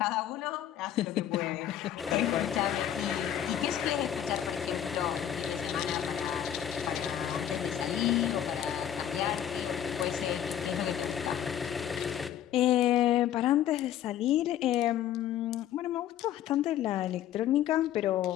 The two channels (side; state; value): right; quieter; 10.7 dB